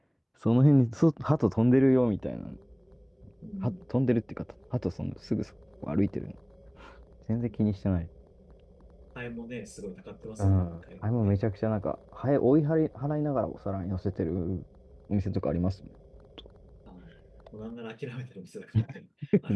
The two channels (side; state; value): both; identical; correlation 1.00